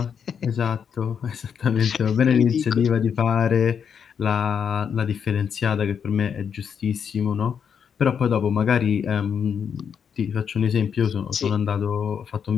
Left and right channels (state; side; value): quieter; right; 7.3 dB